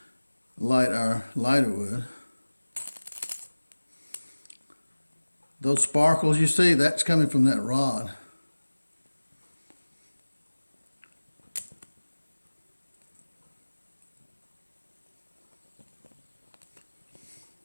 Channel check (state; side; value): inverted; both; correlation -1.00